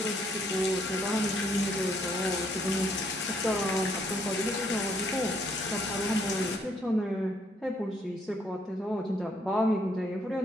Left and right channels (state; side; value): normal; both; correlation 0.69